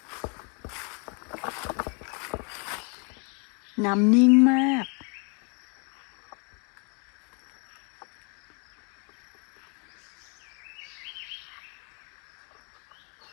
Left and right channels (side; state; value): right; quieter; 36.4 dB